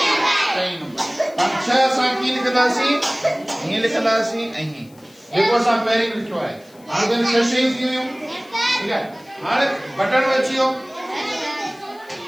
नंबर हम छह असां कीअं लिखंदासीं हीअं लिखंदासीं ऐं हीअं जेको असां पहिरीं लिखियो आहे हाणे त छह शयूं थी वियूं ठीकु आहे हाणे बटन अची वियो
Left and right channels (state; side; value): noise; left; hiss, 29 dB below the sound